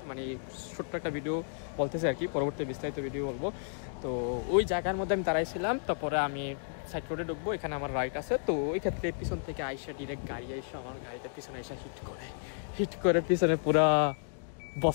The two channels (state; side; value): silent; right; digital silence